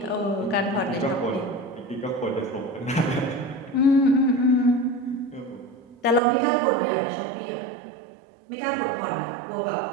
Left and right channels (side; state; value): left; drops out; at 6.2 s